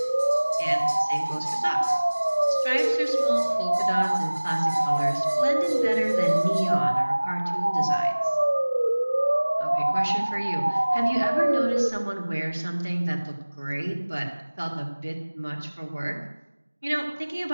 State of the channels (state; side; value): inverted; both; correlation -1.00